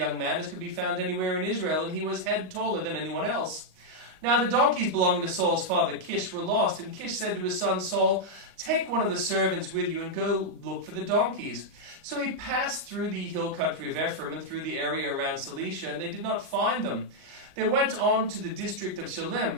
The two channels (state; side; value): late; left; 38 ms